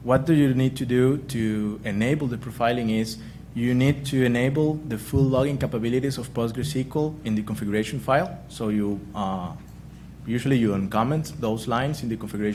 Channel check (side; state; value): both; identical; correlation 1.00